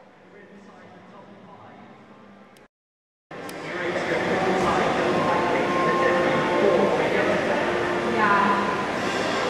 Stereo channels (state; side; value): identical; both; correlation 1.00